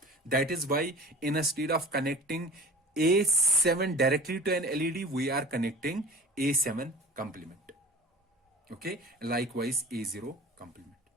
That is why instead of connecting A7 directly to an LED, we are connecting A7 complement. Okay, likewise A0 complement.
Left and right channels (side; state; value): both; normal; correlation 0.41